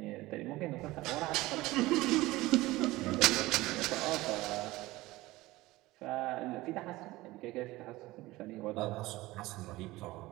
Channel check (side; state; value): left; quieter; 19.0 dB